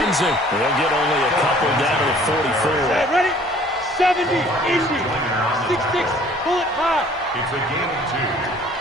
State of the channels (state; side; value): normal; both; correlation 0.54